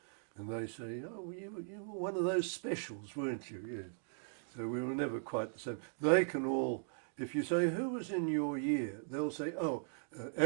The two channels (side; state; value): left; silent; digital silence